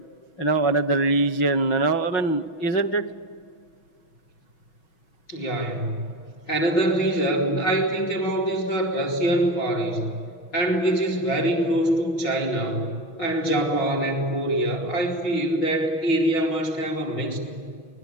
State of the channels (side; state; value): right; late; 6.1 ms